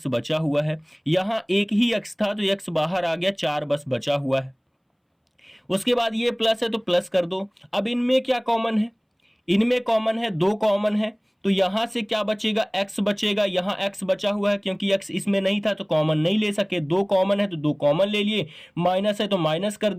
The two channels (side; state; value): both; identical; correlation 1.00